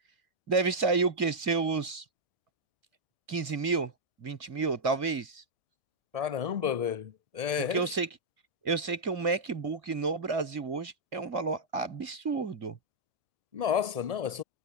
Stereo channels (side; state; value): left; late; 2.2 ms